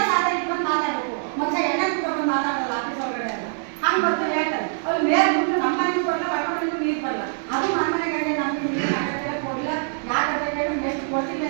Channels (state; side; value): silent; left; digital silence